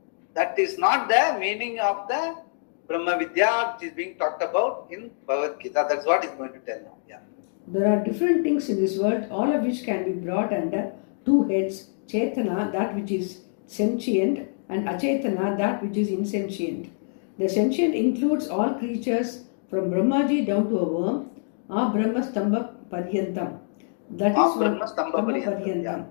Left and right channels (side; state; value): right; silent; digital silence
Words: That is not the meaning of the Brahma Vidya which is being talked about in Bhagavad Gita. That's what he's going to tell now. Yeah. There are different things in this world, all of which can be brought under two heads: Chetana, that which is sentient, and Achetana, that which is insentient. The sentient includes all creatures from Brahmaji down to a worm, Brahmastambha Paryantam. That is one Stambha Paryantam.